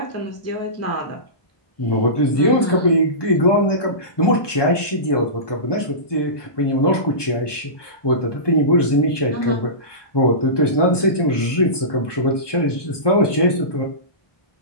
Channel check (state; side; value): late; right; 1.2 ms